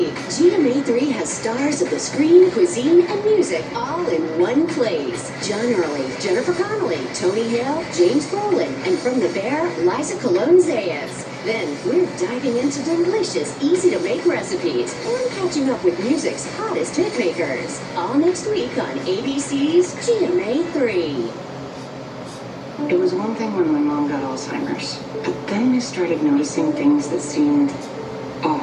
GMA 3 has stars of the screen, cuisine, and music all in one place. John Early, Jennifer Connelly, Tony Hale, James Brolin, and from The Bear, Liza Colón-Zayas. Then we're diving into delicious, easy-to-make recipes and catching up with music's hottest hit makers. All next week on ABC's GMA 3. It was one thing when my mom got Alzheimer's, but then I started noticing things that seemed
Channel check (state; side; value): identical; both; correlation 1.00